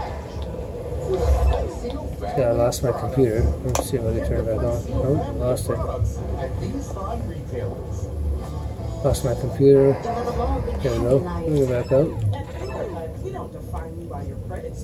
Yeah, I lost my computer. Let's see if I can turn it back on. Oh, lost it. Lost my computer. There we go. Let me go back up. We don't define you by your credit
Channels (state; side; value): identical; both; correlation 1.00